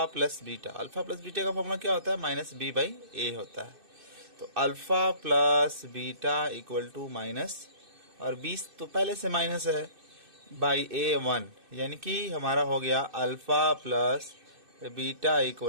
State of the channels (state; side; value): late; left; 2.6 ms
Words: plus beta. Alpha plus beta का फॉर्मूला क्या होता है, -b/a होता है। तो alpha plus beta equal to minus, और 20 तो पहले से माइनस है, बाई a 1, यानी कि हमारा हो गया alpha plus beta